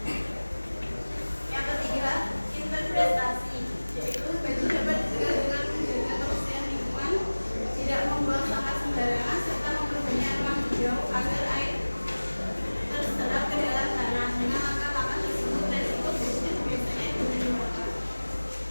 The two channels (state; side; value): inverted; both; correlation -1.00